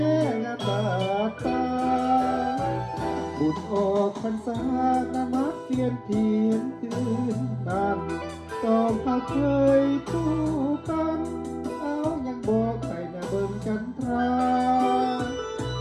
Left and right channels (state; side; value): identical; both; correlation 1.00